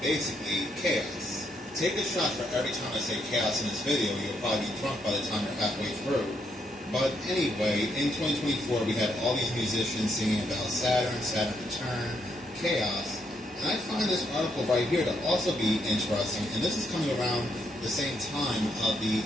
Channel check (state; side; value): normal; both; correlation 0.76